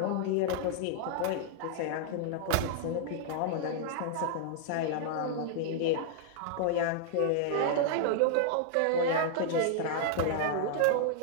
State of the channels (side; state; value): both; different; correlation -0.01